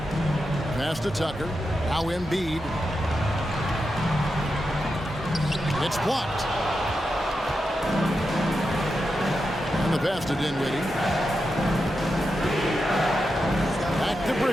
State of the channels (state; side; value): normal; both; correlation 0.88